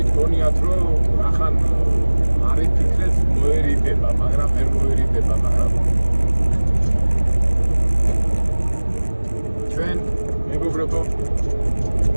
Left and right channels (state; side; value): inverted; both; correlation -1.00